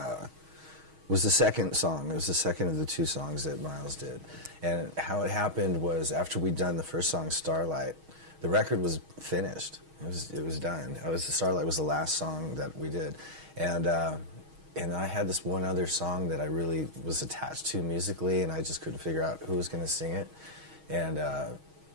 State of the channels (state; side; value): late; left; 6.4 ms